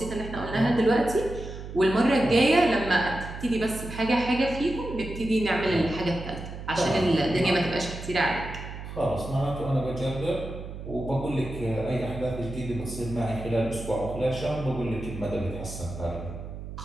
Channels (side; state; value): right; noise; hum, 10 dB below the sound